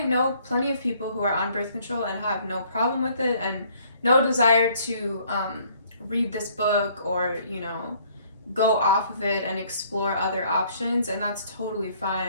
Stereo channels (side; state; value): both; inverted; correlation -0.61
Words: know plenty of people who are on birth control and have no problem with it and no desire to read this book or, go off of it and explore other options, and that's totally